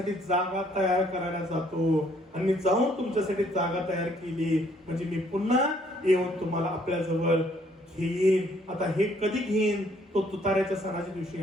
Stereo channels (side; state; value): both; normal; correlation 0.65